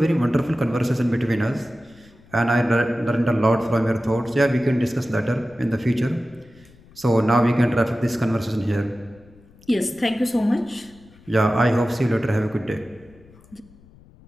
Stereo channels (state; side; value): noise; left; rumble, 26 dB below the sound